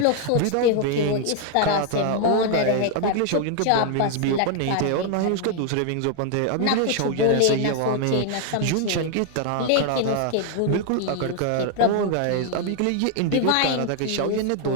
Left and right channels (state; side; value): different; both; correlation 0.00